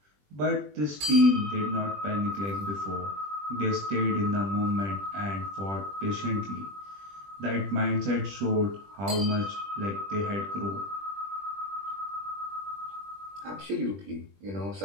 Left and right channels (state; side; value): late; left; 20 ms